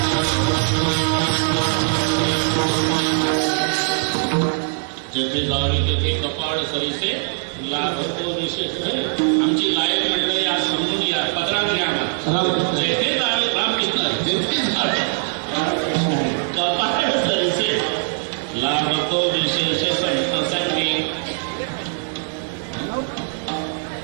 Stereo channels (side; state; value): left; silent; digital silence